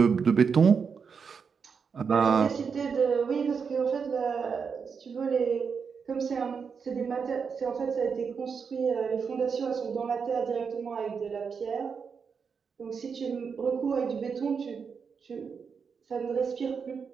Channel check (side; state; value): left; quieter; 6.0 dB